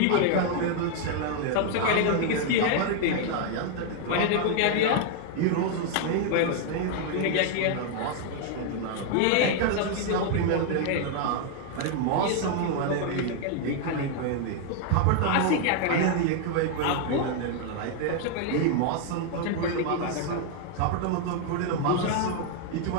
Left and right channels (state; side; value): different; both; correlation 0.00